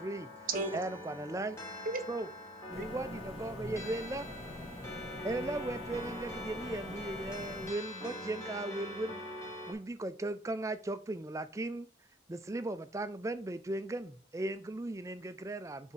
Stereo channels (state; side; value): normal; both; correlation 0.59